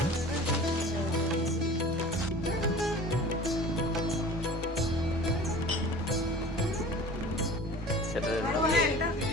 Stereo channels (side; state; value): both; normal; correlation 0.42